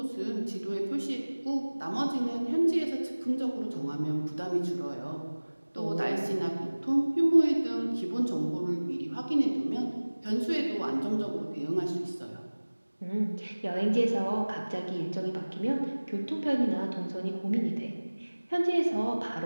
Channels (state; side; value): inverted; both; correlation -1.00